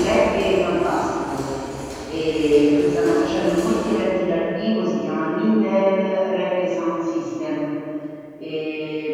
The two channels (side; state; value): both; identical; correlation 1.00